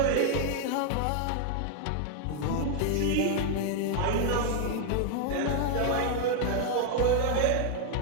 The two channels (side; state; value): both; different; correlation 0.00